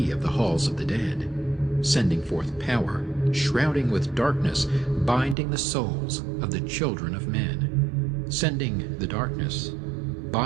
of the halls of the dead, sending forth power, shrouding with darkness, binding the souls of the children of men. Sending the darkness,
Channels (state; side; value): drops out; left; at 5.4 s